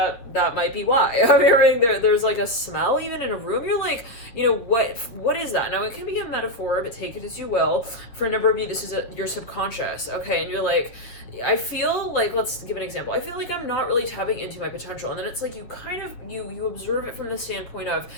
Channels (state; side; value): late; right; 8.4 ms